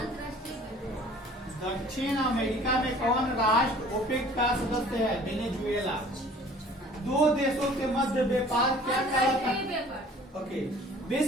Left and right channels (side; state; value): both; normal; correlation 0.50